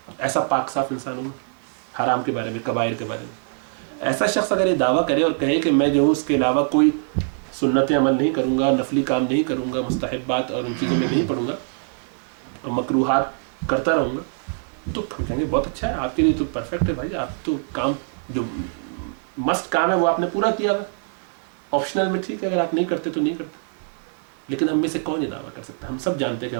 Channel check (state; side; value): silent; left; 60 dB below the other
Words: ایسا پاک صاف انسان ہوں حرام کے بارے میں, کبائر کے بارے میں. ایسا شخص اگر یہ دعویٰ کرے اور کہے کہ میں جو ہوں اس کے علاوہ کوئی سنتیں عمل نہیں کروں گا, نفلی کام نہیں کروں گا, مستحبات اور ان چیزوں میں نہیں پڑھوں گا اور مکروہات کرتا رہوں گا, تو کہیں گے بہت اچھا ہے, آپ کے لیے تو پرفیکٹ ہے بھائی. آپ تو کام جو مسٹ کام ہے وہ آپ نے پورا کیا ہوا. آپشنل میں ٹھیک ہے, اگر آپ نہیں کرتے تو نہیں کرتے. لیکن ہم میں سے کون یہ دعویٰ کر سکتا ہے؟ ہم سب جانتے ہیں کہ